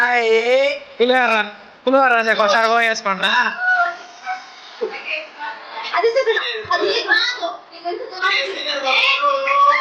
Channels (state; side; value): identical; both; correlation 1.00